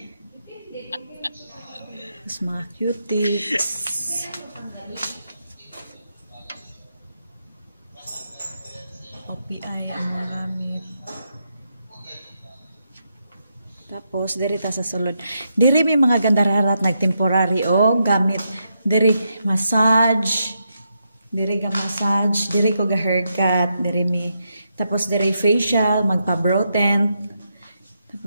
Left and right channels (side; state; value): both; inverted; correlation -0.82